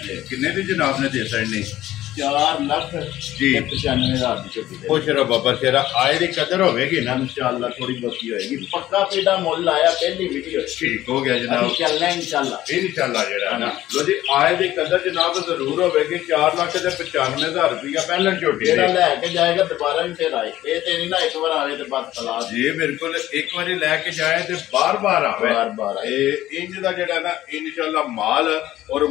किन्ने दी जनाब ने दे सकनी 4 लाख जी 95,000 की झोटी खुश रहो बाबा शेरा आए दी कदर होगी ना इंशाल्लाह थोड़ी बहुती होएगी पक्का पेड़ा मोल आया पहली वीडियो ठीक हो गया जनाब चलना इंशाल्लाह जेड़ा है ना लो जी आए दी कदर जनाब जरूर होगी 4 लाख ते 95,000 रुपया पहलन झोटी जेड़ा लेके जाएगा दोबारा भी फिर आए ये ते नहीं ना एक बार आवे ते बस तलाश जी बिल्कुल एक बारी लेके जाए ते बार बार आवे बार इंज दा जेड़ा ना इंशाल्लाह माल और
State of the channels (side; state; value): right; quieter; 14.3 dB